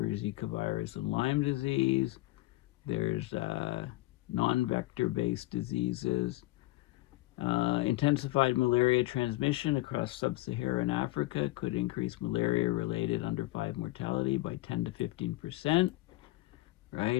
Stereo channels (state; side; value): quieter; right; 18.9 dB